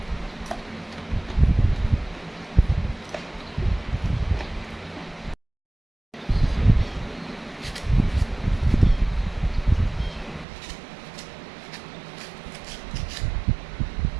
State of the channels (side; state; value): left; drops out; at 10.5 s